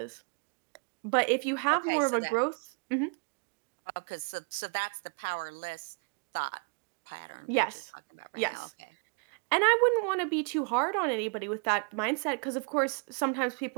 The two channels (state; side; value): quieter; left; 39.1 dB